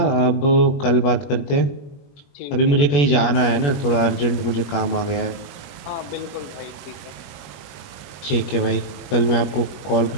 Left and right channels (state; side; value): late; right; 21 ms